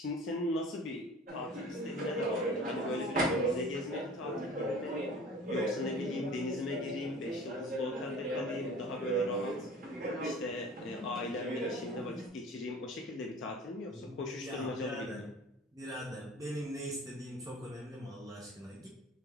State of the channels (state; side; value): normal; both; correlation 0.43